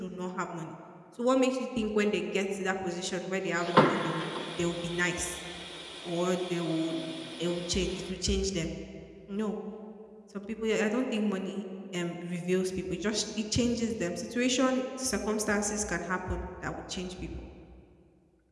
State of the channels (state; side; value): identical; both; correlation 1.00